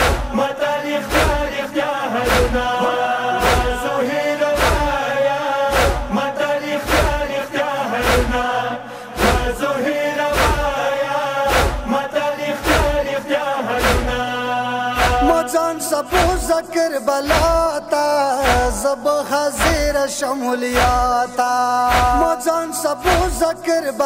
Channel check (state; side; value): identical; both; correlation 1.00